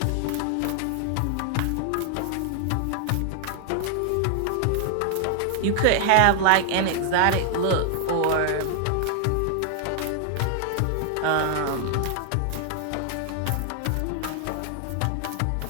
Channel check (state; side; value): different; both; correlation 0.00